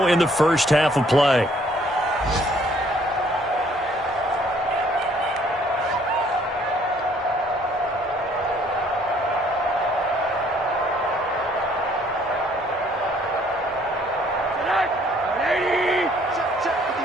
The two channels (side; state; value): both; normal; correlation 0.62